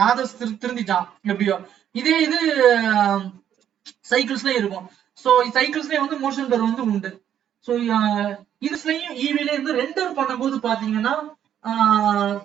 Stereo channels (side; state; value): left; quieter; 9.9 dB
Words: நாதஸ் திருந்திட்டான் எப்படியோ. இதே இது சைக்கிள்ஸ்லயும் இருக்கும். சோ சைக்கிள்ஸ்லயும் வந்து மோஷன் பிளர் வந்து உண்டு. சோ இதுலயும் ஈவில இருந்து ரெண்டர் பண்ணும்போது பாத்தீங்கன்னா